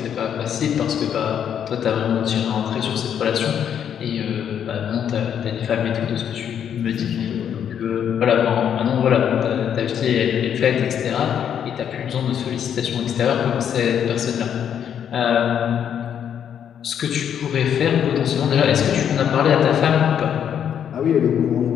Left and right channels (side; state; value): right; quieter; 8.8 dB